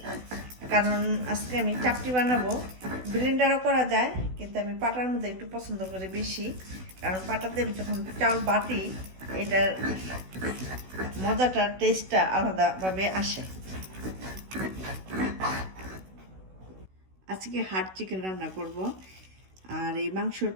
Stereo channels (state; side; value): late; left; 16 ms